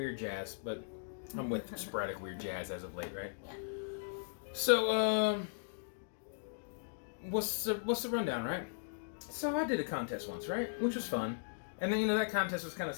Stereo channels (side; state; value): right; silent; digital silence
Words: jazz, but I'm with sporadic weird jazz as of late, right? Yeah. So, what's the rundown, right? So I did a contest once, right? Which was fun. And then, that contest was kind of